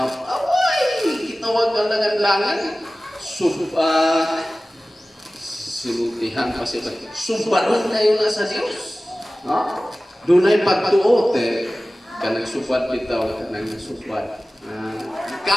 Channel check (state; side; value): normal; both; correlation 0.97